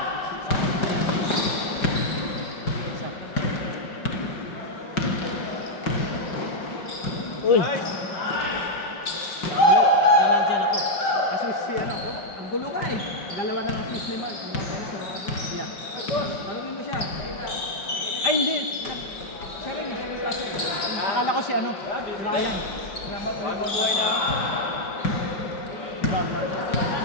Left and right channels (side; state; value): right; late; 5.0 ms